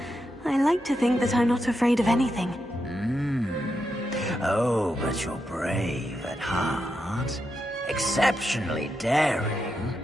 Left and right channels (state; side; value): normal; both; correlation 0.85